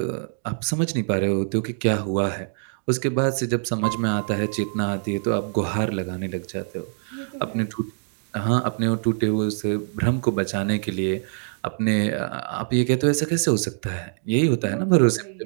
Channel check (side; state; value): left; silent; digital silence